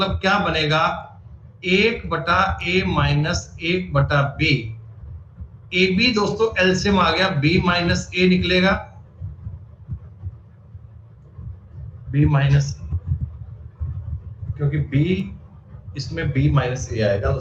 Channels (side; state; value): both; identical; correlation 1.00